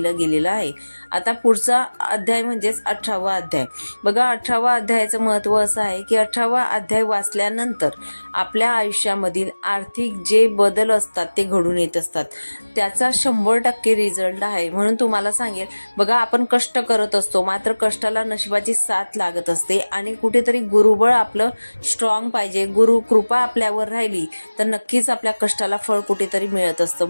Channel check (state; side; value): inverted; both; correlation -1.00